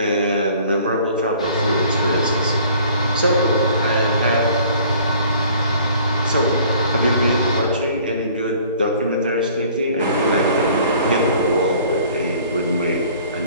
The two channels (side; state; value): both; inverted; correlation -0.54